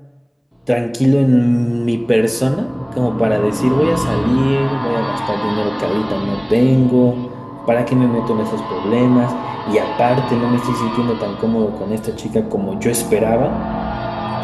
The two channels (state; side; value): identical; both; correlation 1.00